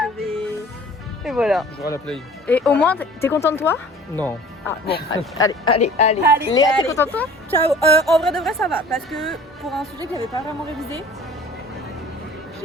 Je vais. Et voilà. Je jouerai à la play. Et au moins, t'es content de toi? Non. Ah bon, allez. Allez, Léa, t'es allez. contente de toi? Ciao. En vrai de vrai, ça va. Parce que pour un sujet que j'avais pas vraiment révisé,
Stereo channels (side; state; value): both; normal; correlation 0.47